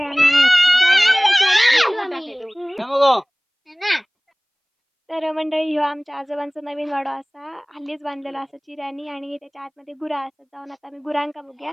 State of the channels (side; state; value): both; identical; correlation 1.00